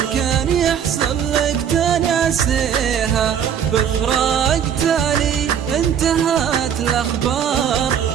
كان يحصل لك تناسيها. بفراق تالي انتهت الأخبار،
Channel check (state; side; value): quieter; left; 8.4 dB